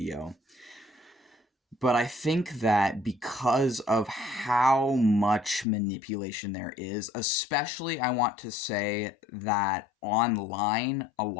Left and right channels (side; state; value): right; drops out; at 5.7 s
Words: But I think that because of how much manipulation there is, especially I want to say that online, a